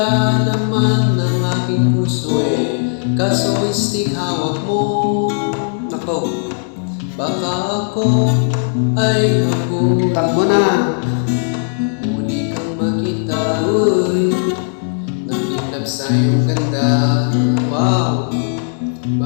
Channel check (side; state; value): right; silent; 68 dB below the other